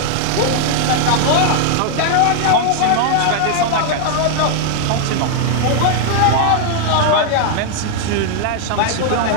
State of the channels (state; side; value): different; both; correlation 0.00